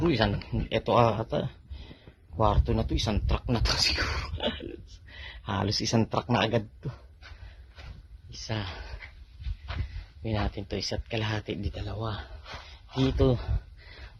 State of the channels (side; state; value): both; identical; correlation 1.00